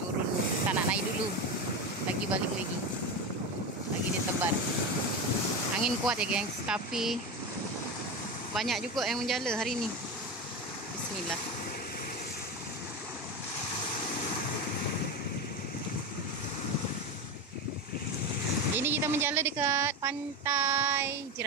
tak nak naik dulu. Lagi balik lagi. Lagi dia tebar. Angin kuat ya gengs, tapi banyak juga yang menjala hari ni. Bismillah. Ini kita menjala dekat Pantai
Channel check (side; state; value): both; normal; correlation 0.19